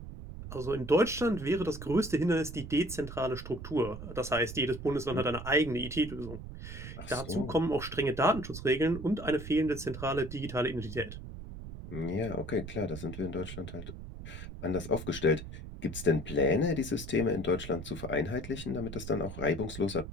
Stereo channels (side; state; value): right; noise; rumble, 10 dB below the sound